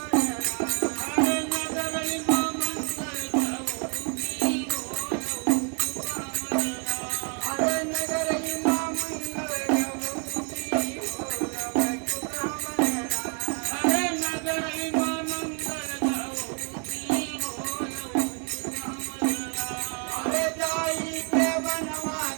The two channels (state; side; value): quieter; left; 39.1 dB